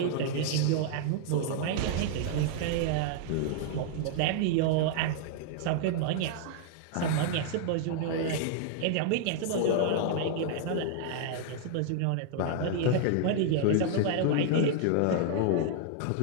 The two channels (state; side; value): different; both; correlation -0.01